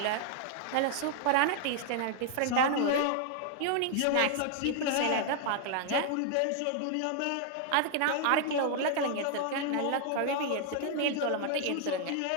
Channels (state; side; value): different; both; correlation 0.00